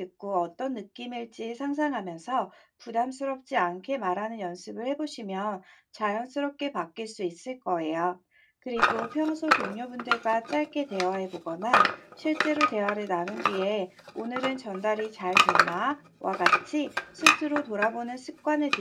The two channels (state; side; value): identical; both; correlation 1.00